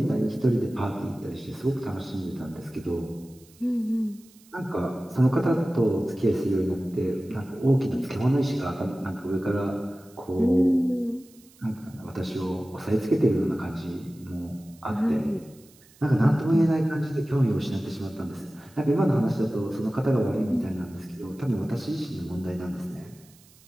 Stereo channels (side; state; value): right; noise; hiss, 27 dB below the sound